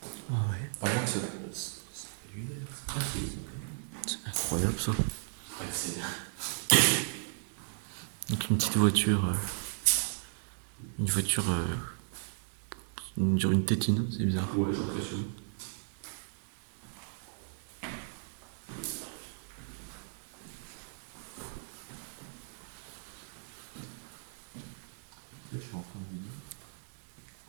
Ah ouais. À moins que c'est cellulaire. Ah, C'est incroyable ça. c'est. Donc une petite voiture. Une voiture. Une tétine, c'est bizarre. Ouais, j'ai l'impression. Je suis en train de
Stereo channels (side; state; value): left; silent; 54 dB below the other